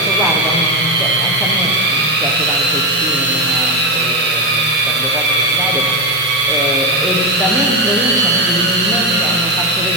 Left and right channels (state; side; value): normal; both; correlation 0.10